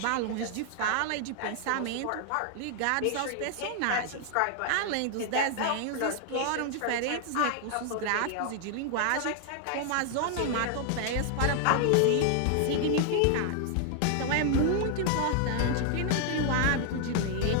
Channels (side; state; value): both; different; correlation 0.00